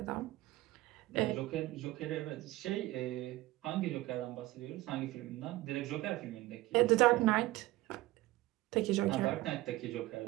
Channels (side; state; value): left; quieter; 18.2 dB